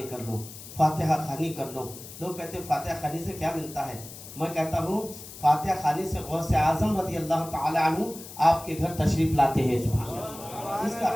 کر لو, فاتحہ خوانی کر لو. لوگ کہتے ہیں فاتحہ خوانی سے کیا ملتا ہے؟ میں کہتا ہوں فاتحہ خوانی سے غوث اعظم رضی اللہ تعالی عنہ آپ کے گھر تشریف لاتے ہیں. سبحان اللہ.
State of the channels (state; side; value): noise; left; hiss, 14 dB below the sound